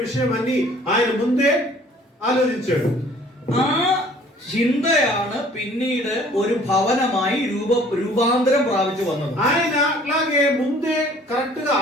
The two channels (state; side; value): normal; both; correlation 0.54